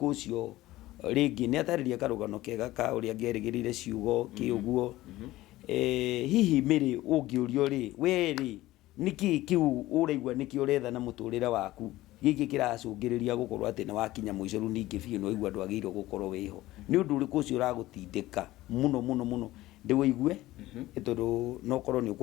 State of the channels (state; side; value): quieter; right; 16.9 dB